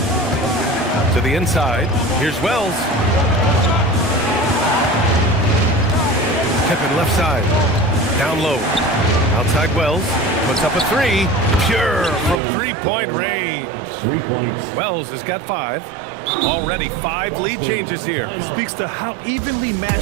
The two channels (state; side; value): drops out; left; at 12.4 s